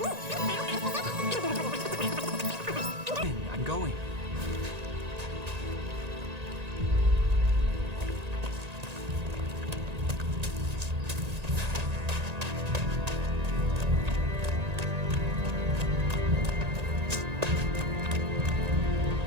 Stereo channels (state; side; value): late; left; 1.9 ms